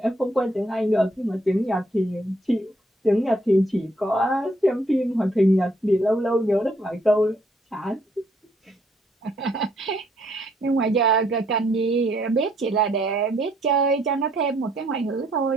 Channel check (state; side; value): normal; both; correlation 0.69